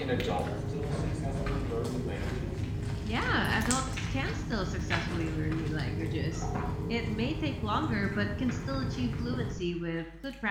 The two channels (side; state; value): both; identical; correlation 1.00